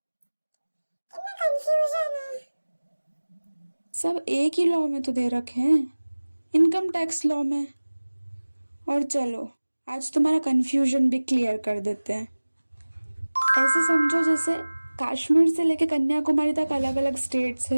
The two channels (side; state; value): both; inverted; correlation -1.00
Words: कितना कंफ्यूजन है। सब एक ही लॉ में तो दे रखे हैं, इनकम टैक्स लॉ में। और चलो आज तुम्हारा कंफ्यूजन भी क्लियर कर देते हैं। ऐसे समझो जैसे कश्मीर से लेके कन्याकुमारी तक अलग अलग स्टेट्स